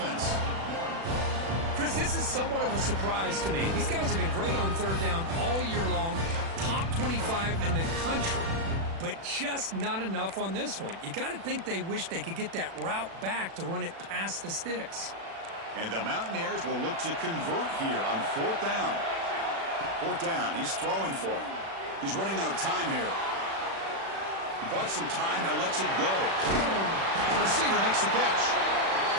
Chris, this is somewhat of a surprise to me. These guys have been great on third down all year long, top 25 in the country, but just not enough on this one. You got to think they wish they could get that route back to run it past the sticks. And the Mountaineers will look to convert here on fourth down. Fourth down, he's throwing for it. He's running out of time here. He bought some time, now lets it go. The receiver makes the catch.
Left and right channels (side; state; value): left; late; 36 ms